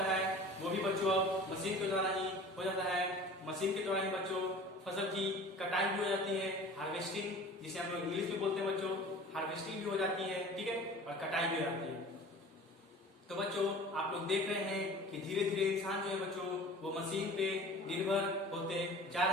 है वो भी बच्चों अब मशीन के द्वारा ही हो जाता है। मशीन के द्वारा ही बच्चों फसल की कटाई भी हो जाती है, हार्वेस्टिंग जिसे हम लोग इंग्लिश में बोलते हैं बच्चों, हार्वेस्टिंग भी हो जाती है। ठीक है, और कटाई भी हो जाती है। तो बच्चों, आप लोग देख रहे हैं कि धीरे धीरे इंसान जो है बच्चों वो मशीन पे निर्भर होते जा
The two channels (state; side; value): normal; both; correlation 0.42